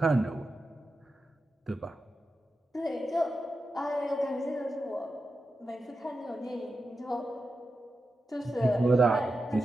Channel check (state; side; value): normal; both; correlation 0.90